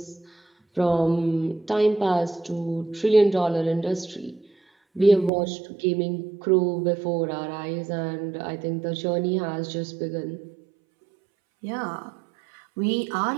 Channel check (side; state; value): left; drops out; at 5.3 s